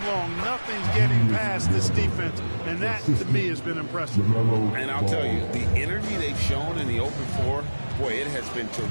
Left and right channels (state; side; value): inverted; both; correlation -1.00